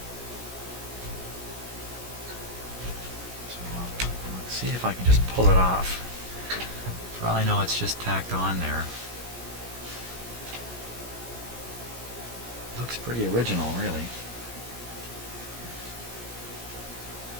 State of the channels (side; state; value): left; late; 17 ms